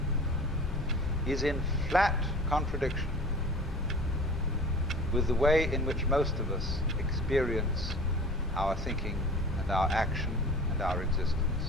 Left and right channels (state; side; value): normal; both; correlation 0.41